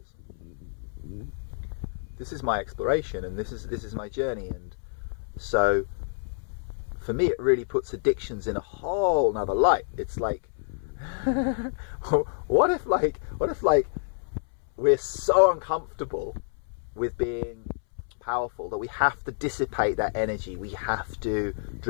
This is my exploration, and this is my journey. And so for me, it really puts addictions in a whole nother light. It's like, what if we're so uncomfortable with being powerful, that we have to dissipate that energy, we have to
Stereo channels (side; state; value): right; silent; 59 dB below the other